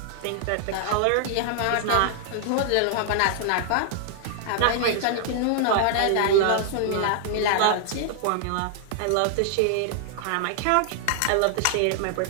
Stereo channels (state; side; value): different; both; correlation 0.00